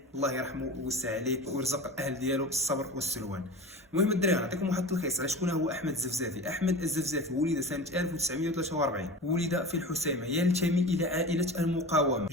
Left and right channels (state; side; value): normal; both; correlation 0.32